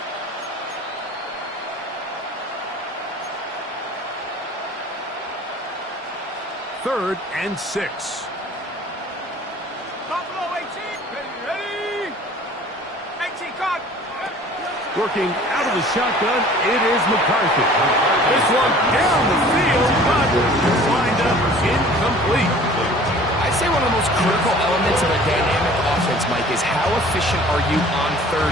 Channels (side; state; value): both; normal; correlation 0.48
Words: Third and 6. Buffalo 18. Ready? 18, cut. Working out of the shotgun, it is McCarthy. This one down the field, but lined up incomplete. I'd say one of the most critical elements of a dynamic offense, Mike, is how efficient are you on